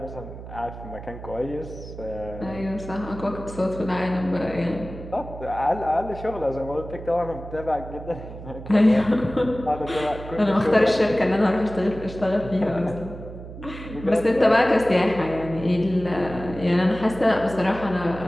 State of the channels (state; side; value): noise; right; hum, 12 dB below the sound